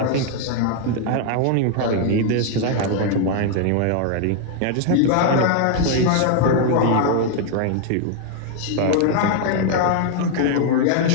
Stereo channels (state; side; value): different; both; correlation 0.00